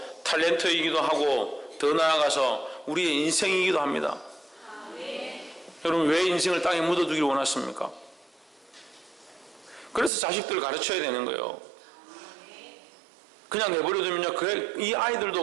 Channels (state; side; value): drops out; left; at 10.1 s